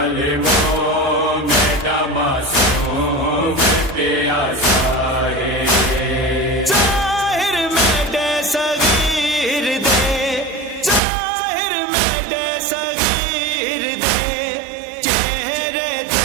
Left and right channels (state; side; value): drops out; left; at 11.0 s